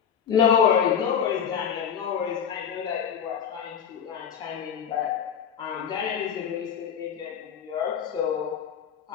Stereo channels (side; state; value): right; quieter; 7.9 dB